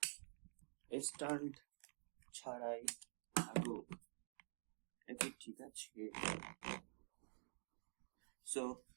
স্ট্যান্ড ছাড়াই থাকুক, এটা ঠিক আছে। সো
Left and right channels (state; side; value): silent; left; digital silence